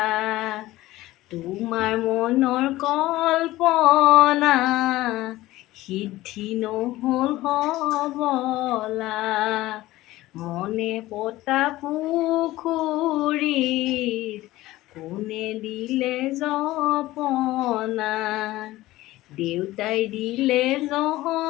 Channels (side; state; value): right; quieter; 17.2 dB